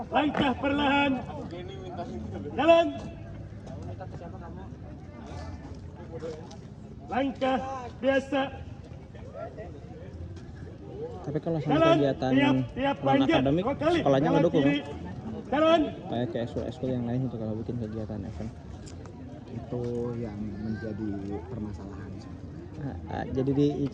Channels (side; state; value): both; identical; correlation 1.00